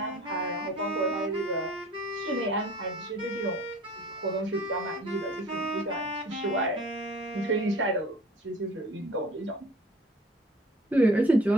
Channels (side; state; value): both; normal; correlation 0.47